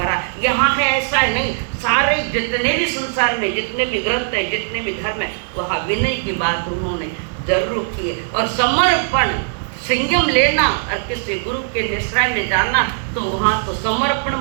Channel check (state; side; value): silent; left; digital silence